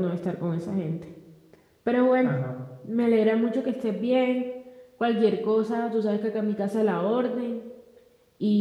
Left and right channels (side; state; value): both; identical; correlation 1.00